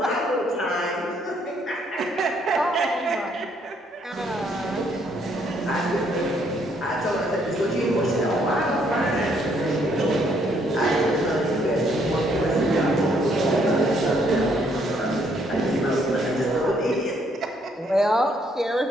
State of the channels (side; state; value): both; normal; correlation 0.69